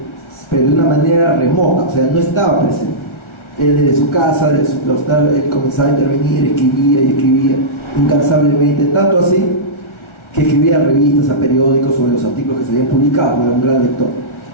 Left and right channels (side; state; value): right; late; 1.4 ms